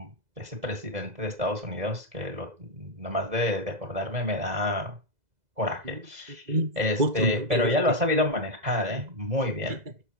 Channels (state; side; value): late; left; 2.0 ms